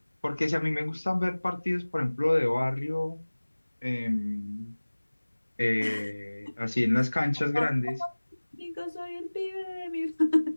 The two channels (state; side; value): inverted; both; correlation -1.00